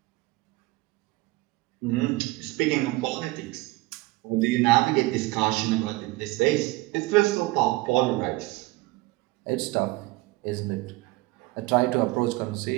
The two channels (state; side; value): quieter; left; 20.8 dB